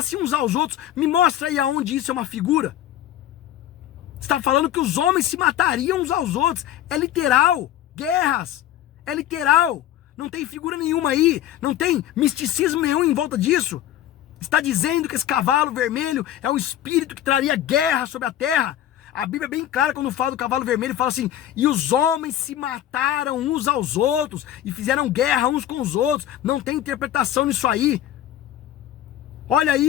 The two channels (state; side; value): quieter; right; 12.0 dB